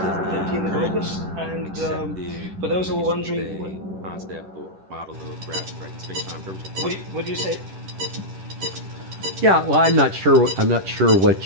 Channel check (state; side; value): late; left; 10 ms